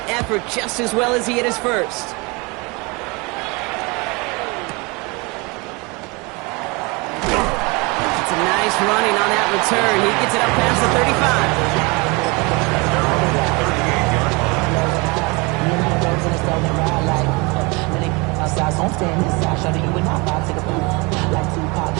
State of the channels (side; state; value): left; quieter; 27.5 dB